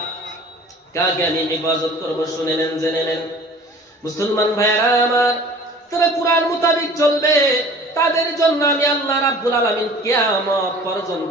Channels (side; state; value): both; normal; correlation 0.46